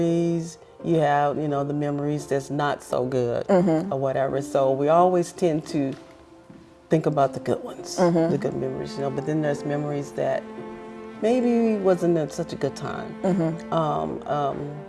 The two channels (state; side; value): identical; both; correlation 1.00